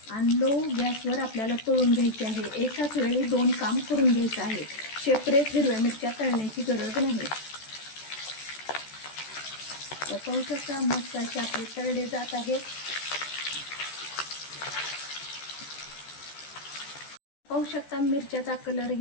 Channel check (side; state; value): right; late; 14 ms